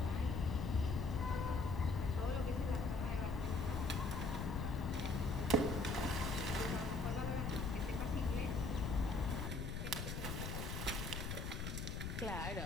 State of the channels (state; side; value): noise; left; rumble, 3 dB below the sound